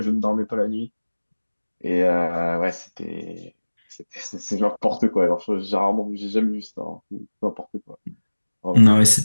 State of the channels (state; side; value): inverted; both; correlation -1.00